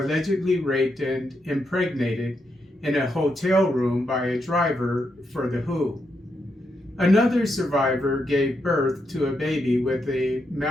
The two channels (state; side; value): normal; both; correlation 0.82